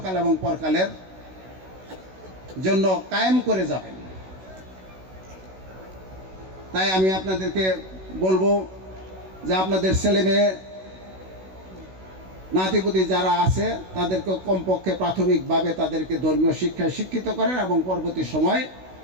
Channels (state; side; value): late; left; 16 ms